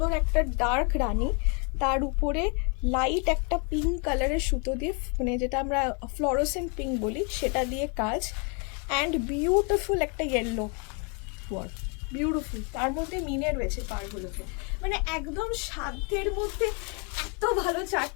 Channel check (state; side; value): quieter; right; 35.4 dB